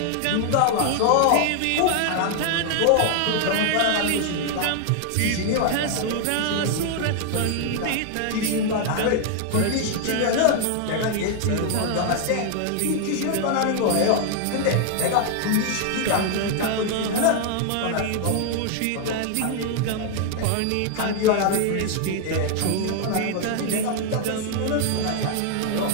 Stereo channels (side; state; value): both; different; correlation 0.00